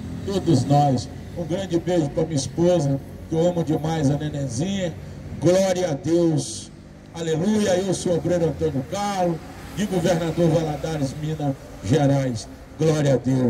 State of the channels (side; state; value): both; identical; correlation 1.00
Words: todos nós. Um grande beijo para minha esposa, que eu amo demais, a nenenzinha. Glória a Deus, aleluia. Eu sou o obreiro Antônio Carlos, de Governador Valadares, Minas Gerais. Glória a